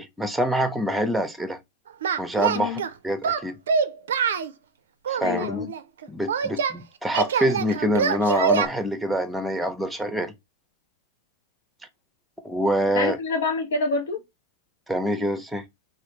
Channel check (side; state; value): both; normal; correlation 0.26